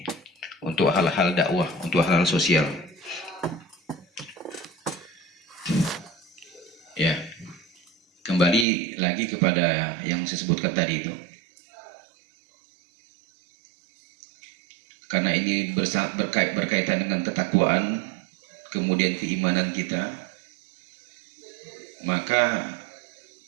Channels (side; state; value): left; drops out; at 8.7 s